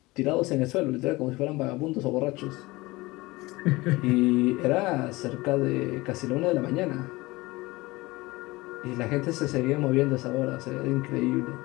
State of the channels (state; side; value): quieter; right; 21.3 dB